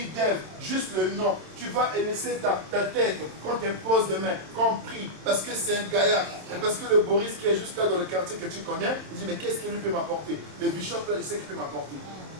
d'Ève, juste le nom, tu vas laisser ta tête quand tu poses des mains, quand on prie, parce que c'est un gaillard, et parce que le Boris qui est juste là dans le quartier que tu connais, il dit, mais qu'est-ce qu'il lui peut m'apporter? Le bishop là, il sait qu'il peut m'apporter.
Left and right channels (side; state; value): left; late; 27 ms